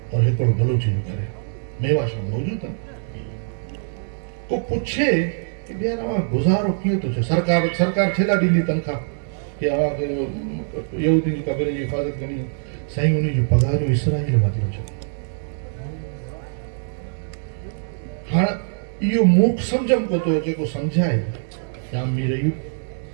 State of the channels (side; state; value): left; silent; digital silence